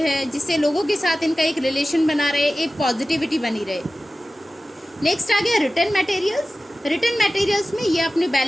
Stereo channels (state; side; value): normal; both; correlation 0.95